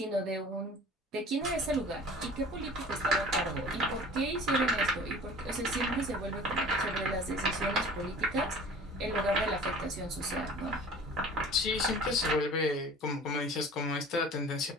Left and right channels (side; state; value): both; normal; correlation 0.44